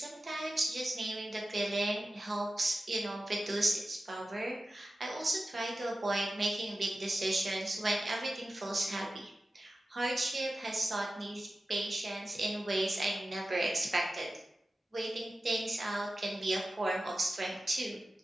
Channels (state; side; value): normal; both; correlation 0.94